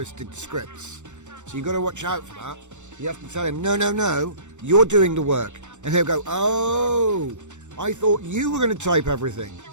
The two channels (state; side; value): late; left; 0.84 ms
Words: scripts. So you got to watch out for that. You have to tell him, no, you're doing the work. And he'll go, oh, I thought you were going to type everything.